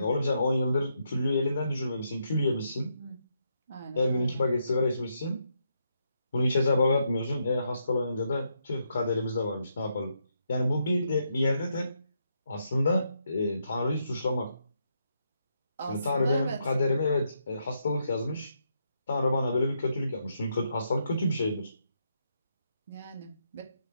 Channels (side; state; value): both; inverted; correlation -0.79